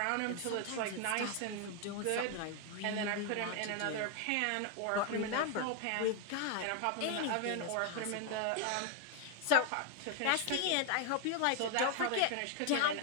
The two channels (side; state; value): both; different; correlation 0.00